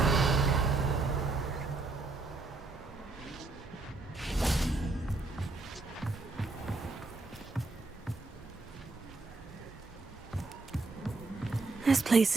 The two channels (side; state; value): left; quieter; 3.7 dB